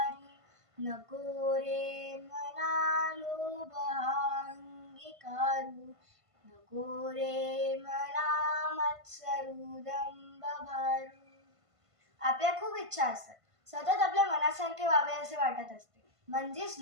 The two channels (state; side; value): late; left; 1.5 ms